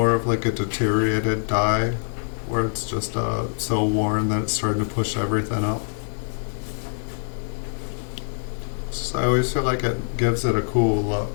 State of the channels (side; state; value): right; silent; digital silence